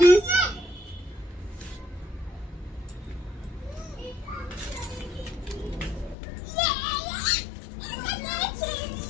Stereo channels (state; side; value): drops out; right; at 6.2 s